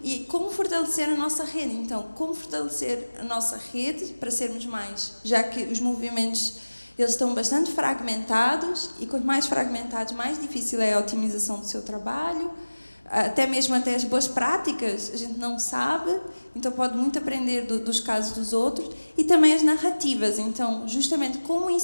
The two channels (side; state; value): both; inverted; correlation -1.00